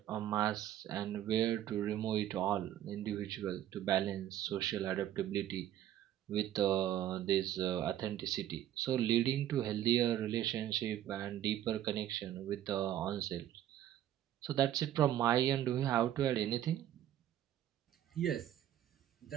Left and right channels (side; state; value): left; quieter; 11.8 dB